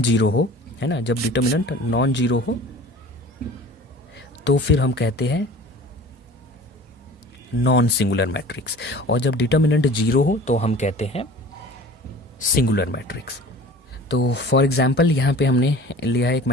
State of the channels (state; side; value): normal; both; correlation 0.43